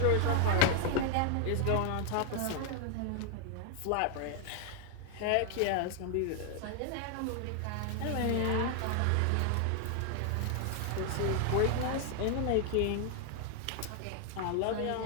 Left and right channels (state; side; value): different; both; correlation 0.00